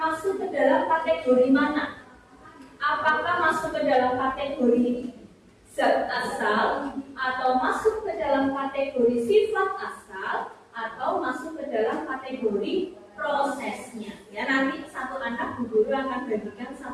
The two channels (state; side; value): identical; both; correlation 1.00